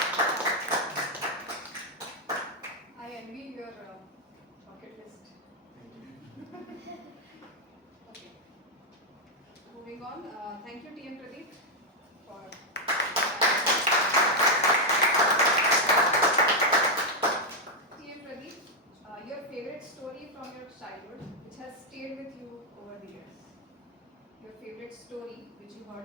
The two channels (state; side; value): normal; both; correlation 0.00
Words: I envy your bucket list. Okay. Moving on. Thank you, T.M. Pradeep, for. T.M. Pradeep, your favorite story from your childhood, which has stayed with you over the years. Your favorite story, which you